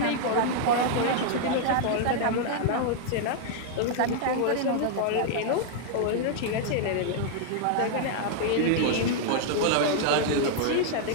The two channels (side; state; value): both; different; correlation 0.00